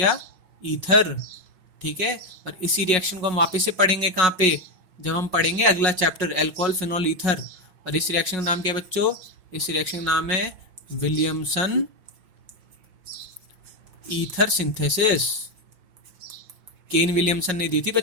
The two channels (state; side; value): late; left; 5.4 ms